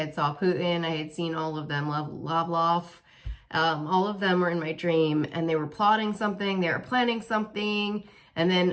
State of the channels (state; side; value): identical; both; correlation 1.00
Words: saw Putin, I had seen all of them, Lavrov, all of them were in my dream and they were plotting something, they were planning something, and